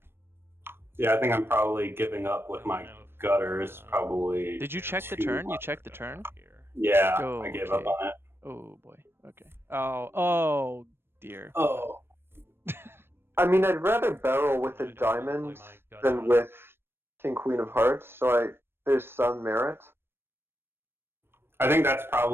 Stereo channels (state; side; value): late; left; 0.11 ms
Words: Yeah, I think I'm probably giving up with my gutters. Probably. Did you check the too turn? You much. checked the turn? Yeah, Oh, I gave up okay. on it. Oh boy. Okay. Oh dear. Oh. I mean, I'd rather barrel with a diamond than with King Queen of Hearts, so there's some merit. I think that's